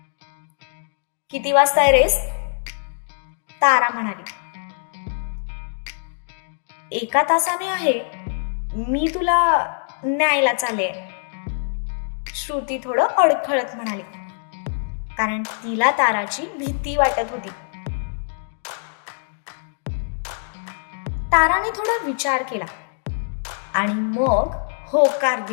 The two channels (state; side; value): silent; right; digital silence